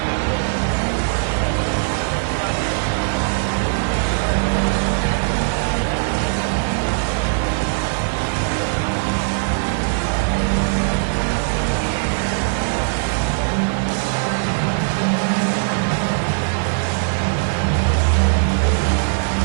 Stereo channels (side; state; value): left; silent; digital silence